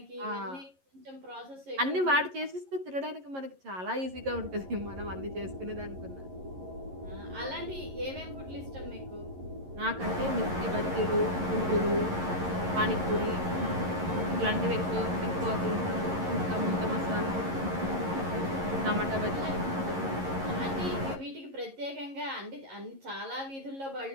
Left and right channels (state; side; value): late; left; 11 ms